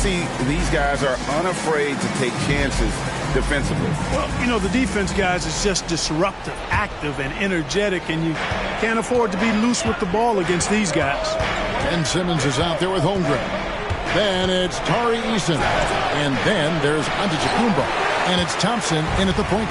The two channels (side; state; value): both; identical; correlation 1.00